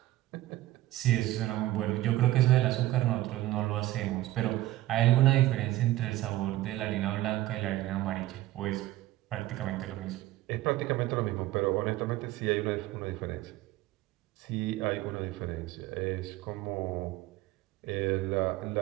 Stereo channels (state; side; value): quieter; left; 15.8 dB